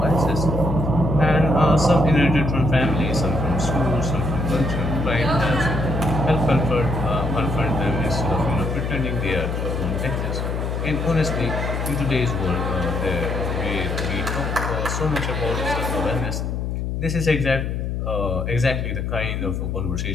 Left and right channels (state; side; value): noise; left; hum, 2 dB below the sound